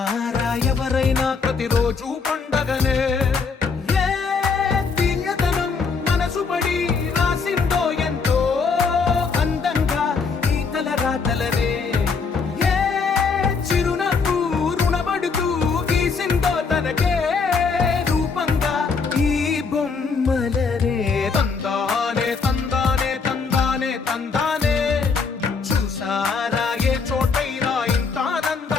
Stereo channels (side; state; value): right; quieter; 5.1 dB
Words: ఎవరైనా ప్రతిరోజు పండగనే ఏ దివ్యతనం మనసు పడి రాసిందో ఎంతో అందంగా ఈ తలరాతలనే ఏ చిరునవ్వు రుణపడుతూ గీసిందో తనకే రూపంగా ఈ బొమ్మలనే తందానే తందానే తందానే తందానే చూసారా ఏ చోటైనా ఇంత